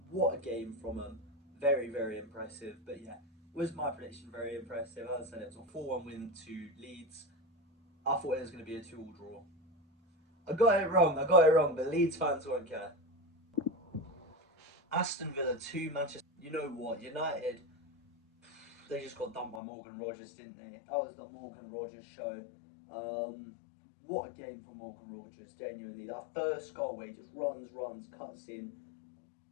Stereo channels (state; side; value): drops out; right; at 19.6 s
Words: What a game from them. Very, very impressive. But yeah, was my prediction very impressive. As I said, it was a 4-1 win to Leeds. I thought it was going to be a 2-2 draw. I got it wrong, but Leeds fans won't care. Aston Villa 2, Manchester. You know what? United, they just got dumped by Morgan Rogers, didn't they? That was the Morgan Rogers show. What a game for Morgan Rogers, genuinely. That first goal where he just runs, cuts in,